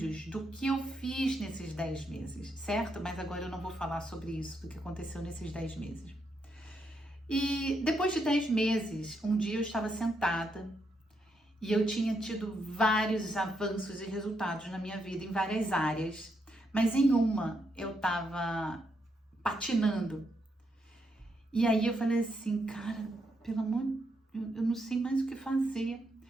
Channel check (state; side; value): normal; both; correlation 0.79